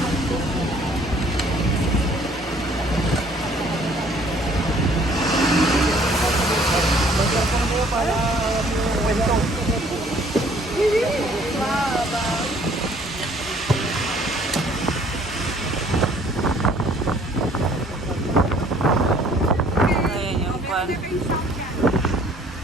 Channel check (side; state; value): both; normal; correlation 0.58